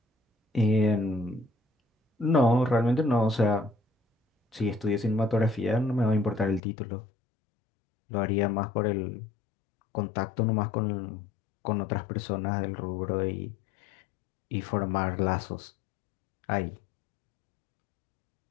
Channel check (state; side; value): drops out; right; at 6.6 s